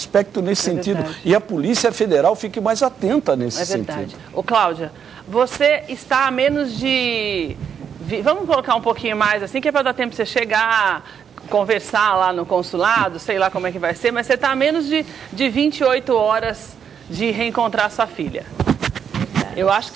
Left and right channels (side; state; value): left; quieter; 7.7 dB